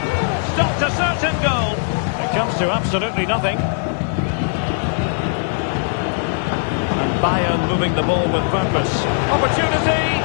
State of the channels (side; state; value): right; silent; digital silence